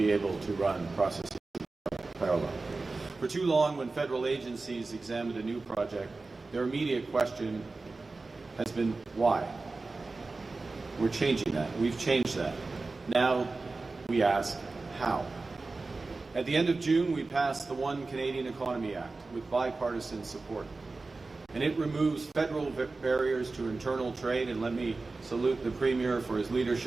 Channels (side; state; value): left; quieter; 3.6 dB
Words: able to run processes in parallel. For too long, when federal agencies examined a new project, their immediate question has been why? We're changing that. We've changed that. Now we ask how. At the end of June, we passed the One Canadian Economy Act with bipartisan support. And it removes federal barriers to internal trade, and let me salute the Premier for his